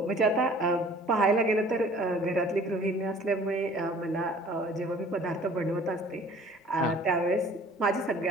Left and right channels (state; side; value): normal; both; correlation 0.50